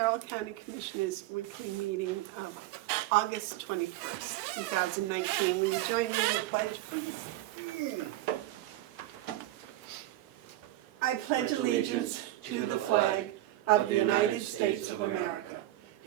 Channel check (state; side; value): quieter; left; 15.5 dB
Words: County Commissioners' weekly meeting of August 21st, 2019. Will you join me in the pledge, please? I pledge allegiance to the flag of the United States of America